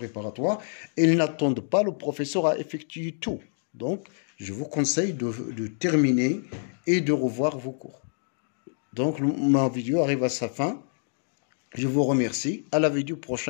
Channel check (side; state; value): right; silent; digital silence